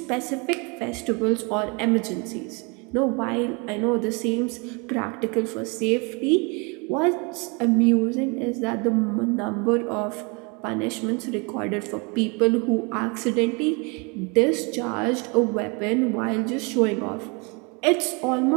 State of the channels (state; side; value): quieter; left; 31.0 dB